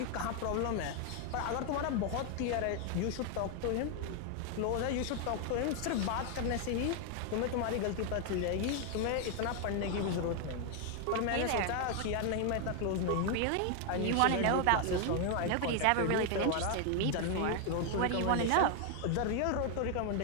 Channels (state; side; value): different; both; correlation 0.00